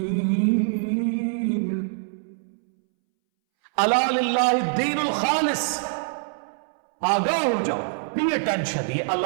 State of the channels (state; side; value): silent; left; 62 dB below the other